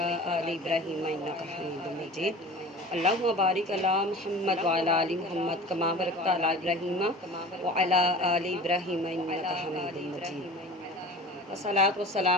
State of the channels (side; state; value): both; normal; correlation 0.38